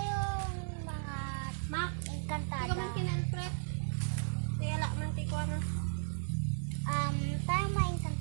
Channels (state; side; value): silent; left; digital silence